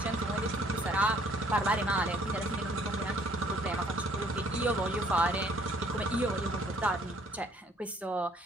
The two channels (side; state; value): both; normal; correlation 0.61